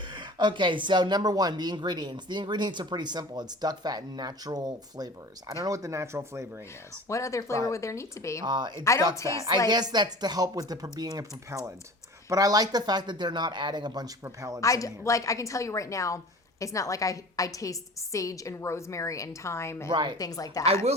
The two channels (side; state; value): both; normal; correlation 0.40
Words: Okay, so number one, the ingredients. The ingredients are pretty simple. It's duck fat and natural flavors. I don't know what the natural flavoring is. What other flavor would there need to be? It's I don't duck fat. taste I guess that's to help with the being a propellant. But I like the fact that they're not adding a bunch of propellants in here. I can tell you right now, it's not like I taste sage and rosemary and thyme and things like that. I